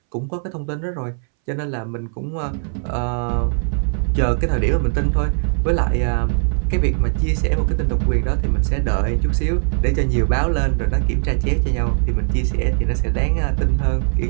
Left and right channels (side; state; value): left; silent; 65 dB below the other